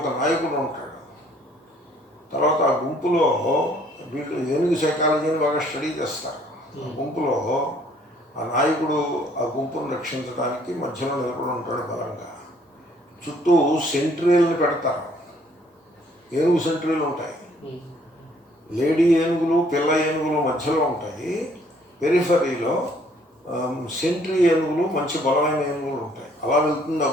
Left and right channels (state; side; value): normal; both; correlation 0.62